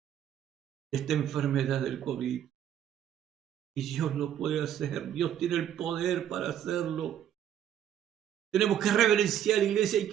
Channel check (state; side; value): quieter; left; 10.2 dB